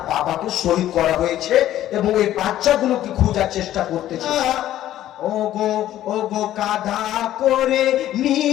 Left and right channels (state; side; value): quieter; right; 12.9 dB